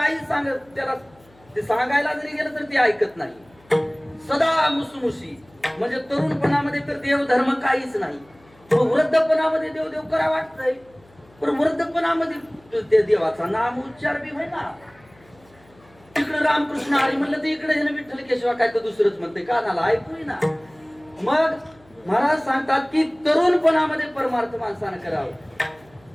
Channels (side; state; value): left; noise; hum, 29 dB below the sound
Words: सांगत त्याला ते सांगायला जरी गेलं तर ते ऐकत नाही. सदा मुसमुशी. म्हणजे तरुणपणामध्ये तर देव धर्म काहीच नाही. वृद्धपणामध्ये देव देव करा वाटतंय पण वृद्धपणामध्ये ते देवाचा नाम उच्चार बी होईना. तिकडे रामकृष्ण हरी म्हणलं तर इकडे विठ्ठल केशवा काय तर दुसरंच म्हणते कानाला ऐकू ना. मग महाराज सांगतात की तरुणपणामध्ये परमार्थ माणसानं करावं.